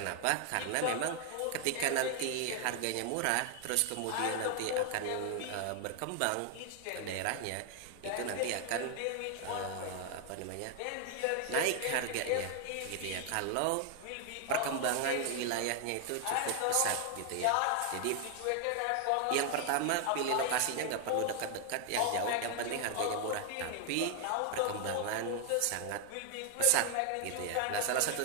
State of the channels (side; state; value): both; different; correlation 0.00